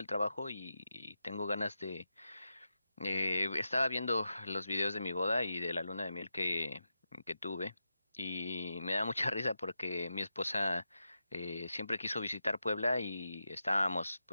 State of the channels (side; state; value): both; inverted; correlation -0.88